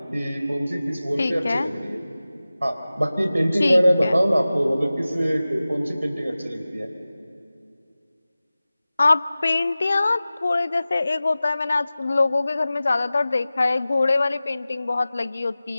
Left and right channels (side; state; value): both; inverted; correlation -0.97